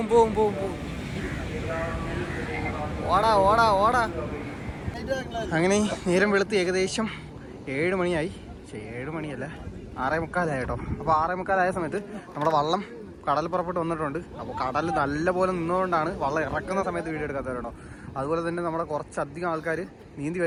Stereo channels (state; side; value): identical; both; correlation 1.00